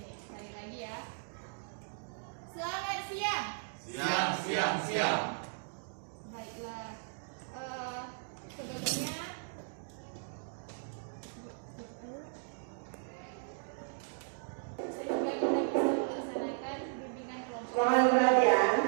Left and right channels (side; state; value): left; silent; digital silence